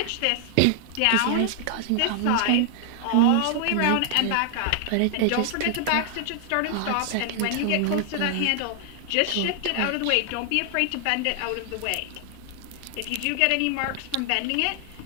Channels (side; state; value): both; different; correlation 0.00